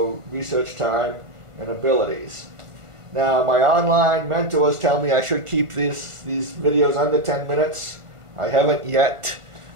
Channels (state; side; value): late; left; 1.4 ms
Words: research time and abilities. Now, my online mentors tell me I should keep these videos under 10 minutes. I haven't yet.